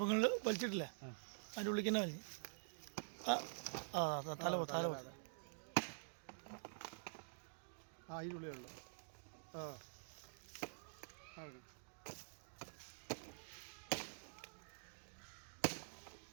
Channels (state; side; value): silent; left; digital silence